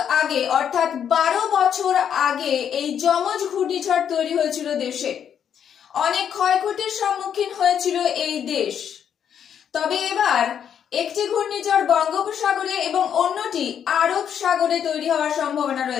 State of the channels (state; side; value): quieter; right; 8.5 dB